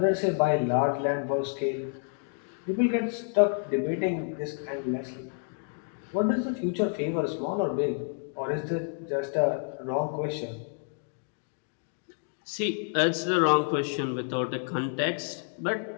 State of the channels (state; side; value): silent; right; 58 dB below the other